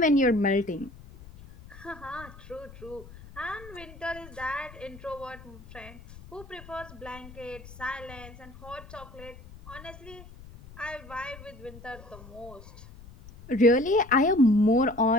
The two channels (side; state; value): left; noise; rumble, 18 dB below the sound